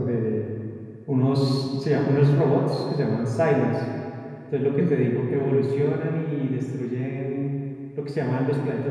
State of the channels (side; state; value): both; identical; correlation 1.00